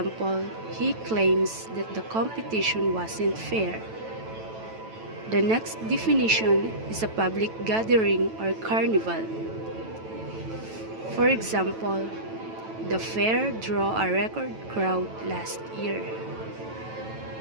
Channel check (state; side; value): late; left; 9.1 ms